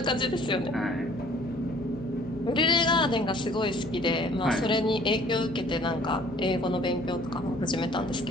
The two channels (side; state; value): both; normal; correlation 0.55